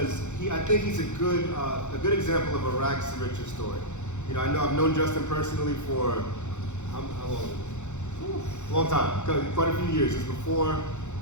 I think he's a good example of a rags to riches story. You know, I've known Justin personally for how long? A long time, quite a few years. It's before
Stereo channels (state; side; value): late; right; 0.83 ms